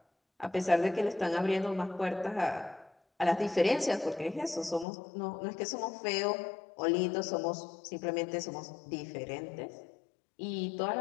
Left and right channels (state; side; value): drops out; right; at 4.9 s